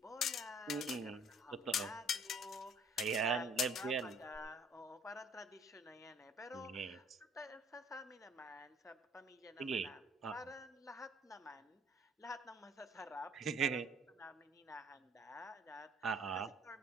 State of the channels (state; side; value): normal; both; correlation 0.57